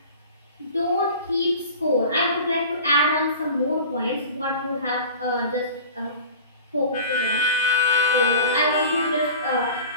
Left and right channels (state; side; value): inverted; both; correlation -0.39